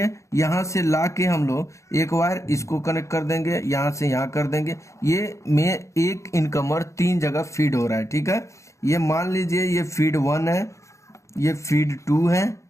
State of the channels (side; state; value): right; late; 0.14 ms